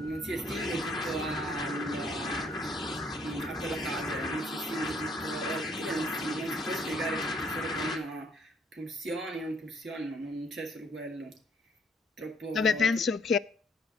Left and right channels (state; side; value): normal; both; correlation 0.65